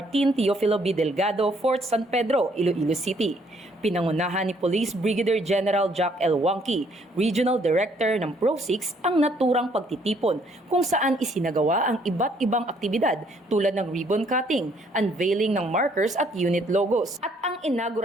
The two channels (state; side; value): normal; both; correlation 0.66